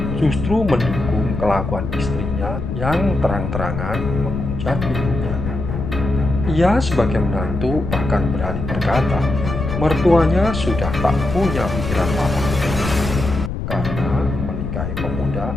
justru mendukung kelakuan istrinya yang terang-terangan menghujat ibunya. Ia sebagai menantu bahkan berani berkata, mertuanya sudah tak punya pikiran waras karena menikahi pemuda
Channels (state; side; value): noise; left; rumble, 5 dB below the sound